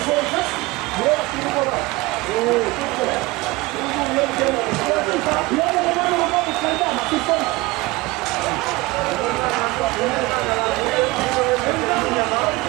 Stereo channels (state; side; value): quieter; left; 21.8 dB